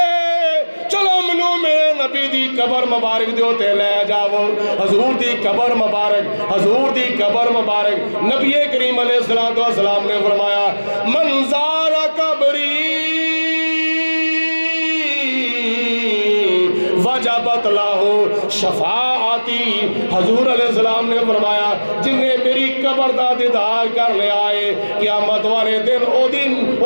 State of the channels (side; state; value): both; inverted; correlation -1.00